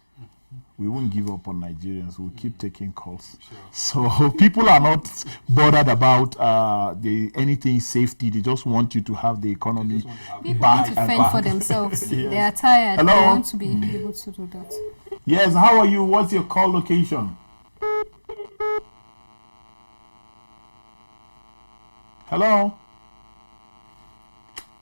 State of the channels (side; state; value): both; inverted; correlation -1.00